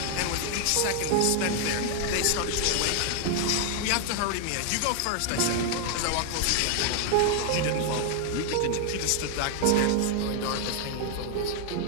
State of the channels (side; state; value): both; different; correlation 0.00